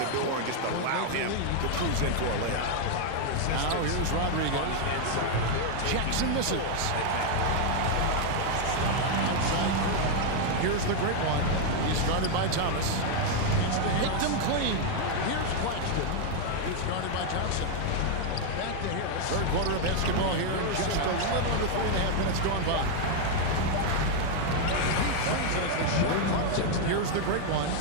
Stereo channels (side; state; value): both; different; correlation 0.00